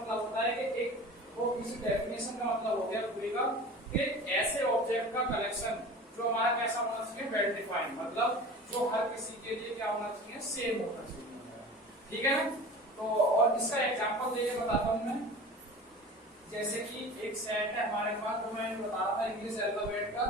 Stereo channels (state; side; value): normal; both; correlation 0.38